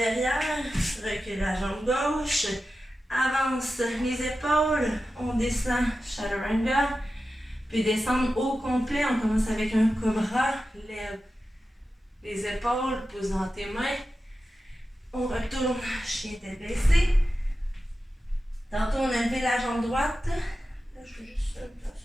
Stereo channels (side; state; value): both; normal; correlation 0.92